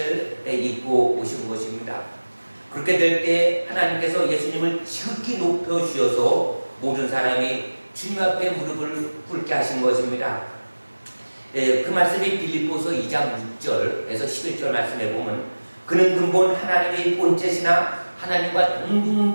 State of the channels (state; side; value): inverted; both; correlation -1.00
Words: 입고 오신 것입니다. 그렇게 될 때 하나님께서 예수님을 지극히 높여주셔서 모든 사람이 주님 앞에 무릎을 꿇게 하신 것입니다. 그 말씀이 빌립보서 2장 6절에서 11절 말씀에 보면 그는 근본 하나님의 본체시나 하나님과